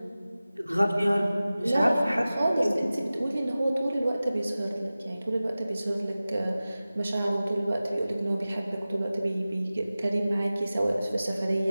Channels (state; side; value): inverted; both; correlation -0.97